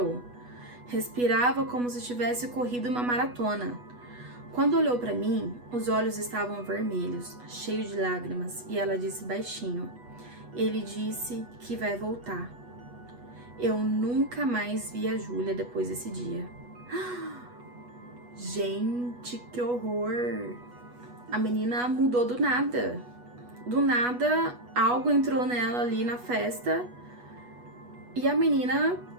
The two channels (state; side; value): late; left; 8.2 ms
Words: Respirava como se tivesse corrido uma maratona. Quando olhou para mim, os olhos estavam vermelhos, cheios de lágrimas, e ela disse baixinho: ele disse que vai voltar. Eu nunca mais vi a Júlia depois desse dia. Gente, que horror! A menina mudou do nada. Do nada, algo entrou nela ali na festa e a menina